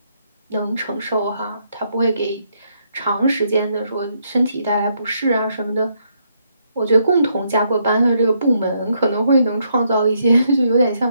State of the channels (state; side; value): inverted; both; correlation -0.75